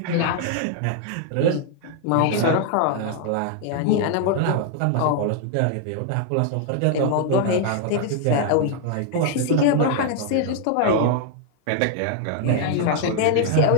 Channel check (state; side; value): different; both; correlation 0.00